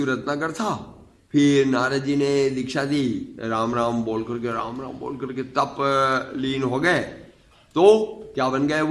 रत्नाकर था। फिर नारद जी ने दीक्षा दी, राम राम बोल करके, राम राम बोल करके तप लीन हो गए। तो क्या बन गए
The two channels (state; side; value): identical; both; correlation 1.00